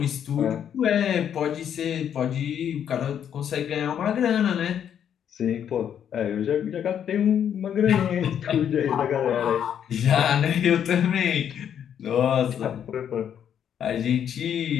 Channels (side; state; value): right; quieter; 9.0 dB